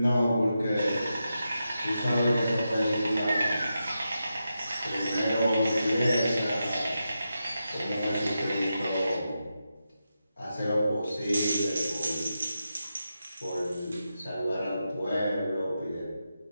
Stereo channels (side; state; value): both; inverted; correlation -0.88